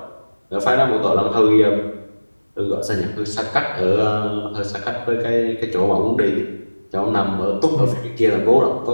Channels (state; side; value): inverted; both; correlation -1.00